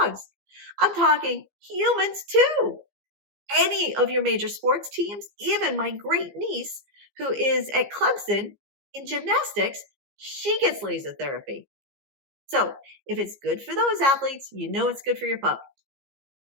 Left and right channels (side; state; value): left; late; 15 ms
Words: dogs. I'm talking humans too. Any of your major sports teams, even my great niece who is at Clemson in gymnastics, she gets laser therapy. So if it's good for those athletes, you know it's good for your pup.